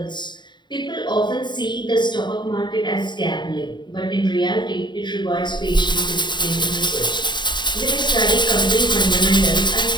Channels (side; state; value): right; late; 0.22 ms